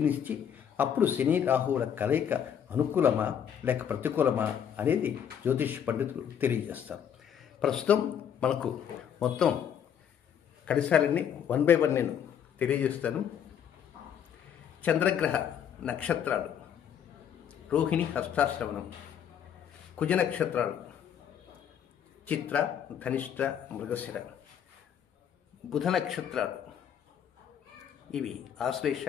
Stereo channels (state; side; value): quieter; right; 8.7 dB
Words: అప్పుడు శని రాహువుల కలయిక అనుకూలమా లేక ప్రతికూలమా అనేది జ్యోతిష్ పండితులు తెలియజేస్తారు. ప్రస్తుతం మనకు మొత్తం కడిసాలన్నీ 1 by 1 నేను తెలియజేస్తాను. చంద్రగ్రహ నక్షత్రాలు: రోహిణి, హస్తాశ్రవణం. కుజ నక్షత్రాలు: చిత్ర, ధనిష్ట, మృగశిర. బుధ నక్షత్రాలు ఇవి ఆశ్లేష,